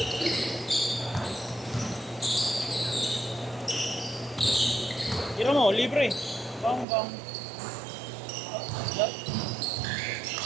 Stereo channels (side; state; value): left; drops out; at 6.9 s